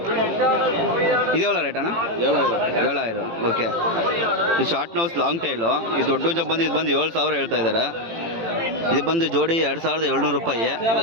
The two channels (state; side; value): late; left; 18 ms